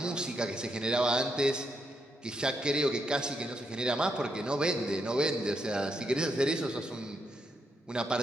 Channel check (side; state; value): both; normal; correlation 0.79